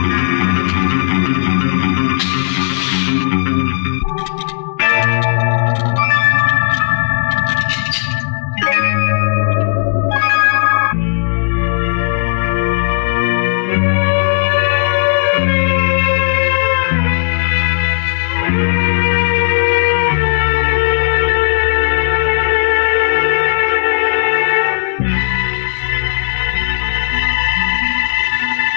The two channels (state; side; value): silent; right; digital silence